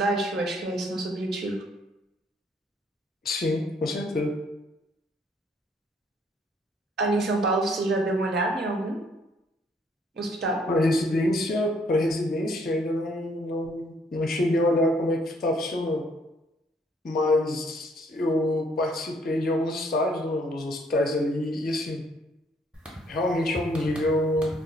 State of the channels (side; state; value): both; normal; correlation 0.65